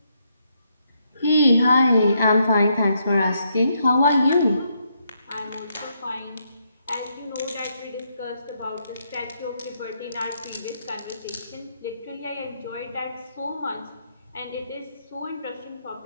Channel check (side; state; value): both; inverted; correlation -0.76